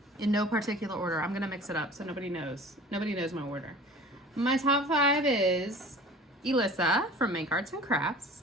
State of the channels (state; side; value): normal; both; correlation 0.43